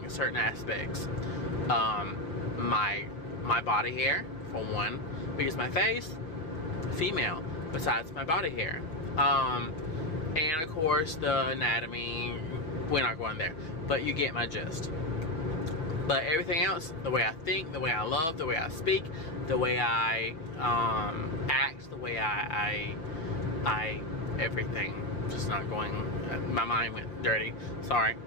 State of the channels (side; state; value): right; late; 6.2 ms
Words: certain aspects. My body hair, for one, because my face, female, besides my body hair. And of course the anatomy, we're not going there, but you get my gist. But everything else, the way I think, the way I love, the way I speak, the way I act, the way I everything, just not going, my mind went dirty, sorry.